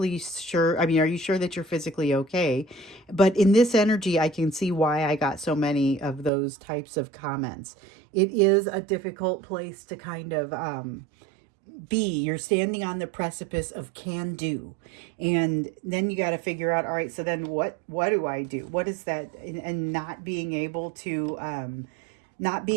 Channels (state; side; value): drops out; left; at 6.3 s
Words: sure? I mean, are you sure that you're physically okay? But in this energy, I can see why I got so many of those types of comments. It is a difficult place to kind of be. You're standing on the precipice of can do, and then you got to figure out, all right, so then what do I do? What is that? And not being able to